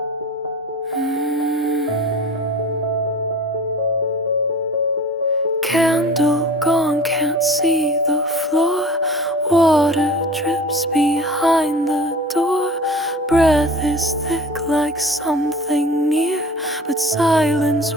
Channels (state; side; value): normal; both; correlation 0.40